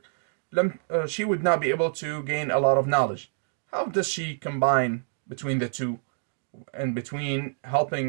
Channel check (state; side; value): silent; left; digital silence